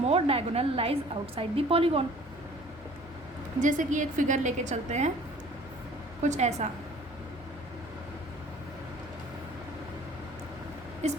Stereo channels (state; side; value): normal; both; correlation 0.50